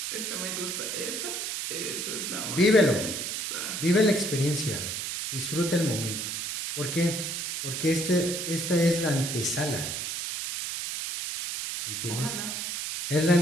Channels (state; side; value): noise; right; hiss, 4 dB below the sound